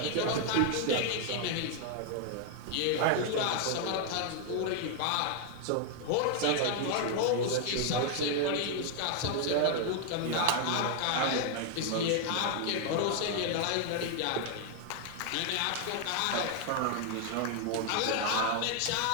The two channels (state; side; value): different; both; correlation 0.00